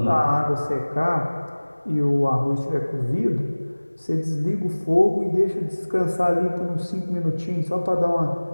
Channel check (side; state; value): both; inverted; correlation -1.00